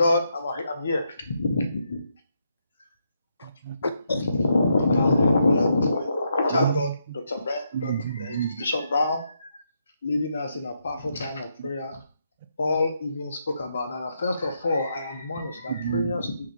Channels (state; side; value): inverted; both; correlation -0.79